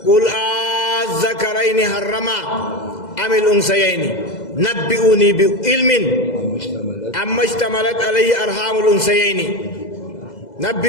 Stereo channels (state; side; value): late; right; 2.0 ms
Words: قل الذكرين حرم أم الأنثيين نبئوني بعلم أما اشتملت عليه أرحام الأنثيين